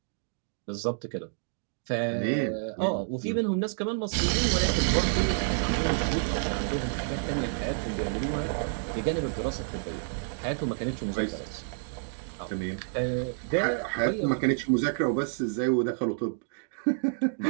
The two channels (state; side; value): silent; left; digital silence